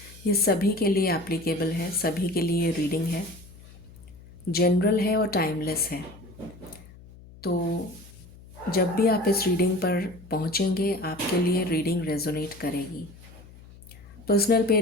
ये सभी के लिए एप्लीकेबल है, सभी के लिए रीडिंग है, जनरल है और टाइमलेस है। तो जब भी आप इस रीडिंग पर पहुंचेंगे आपके लिए रीडिंग रेजोनेट करेगी। पर्सनल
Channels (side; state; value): left; noise; hum, 20 dB below the sound